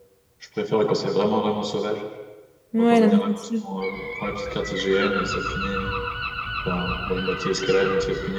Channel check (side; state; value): both; identical; correlation 1.00